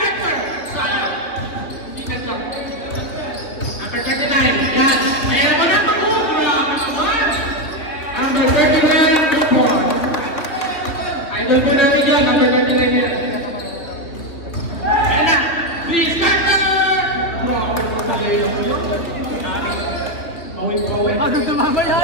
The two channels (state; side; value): late; right; 3.4 ms